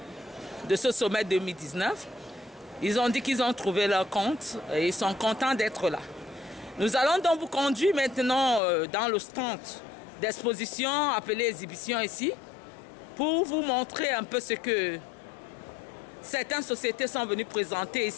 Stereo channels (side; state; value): right; drops out; at 8.6 s